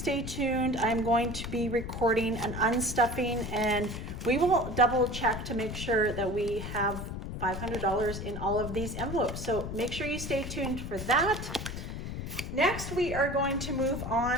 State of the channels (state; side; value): noise; left; rumble, 6 dB below the sound